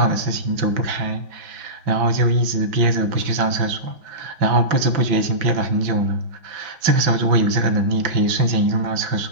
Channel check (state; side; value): late; left; 5.9 ms